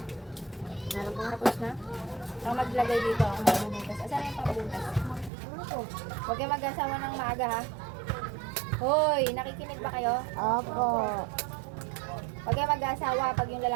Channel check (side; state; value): left; drops out; at 5.3 s